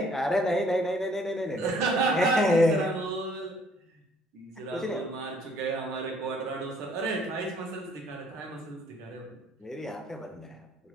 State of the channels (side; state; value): both; normal; correlation 0.61